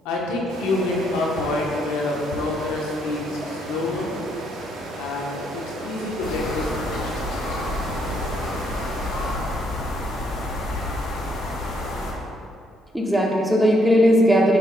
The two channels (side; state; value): both; normal; correlation 0.72